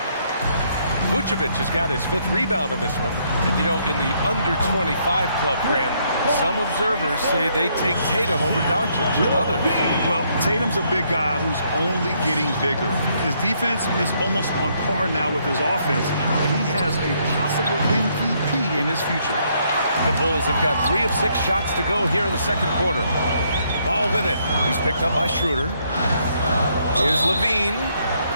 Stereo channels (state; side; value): inverted; both; correlation -0.71